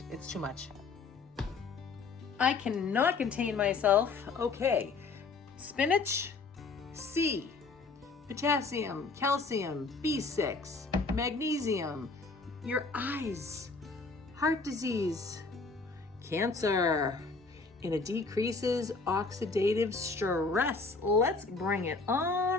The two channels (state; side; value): quieter; right; 4.2 dB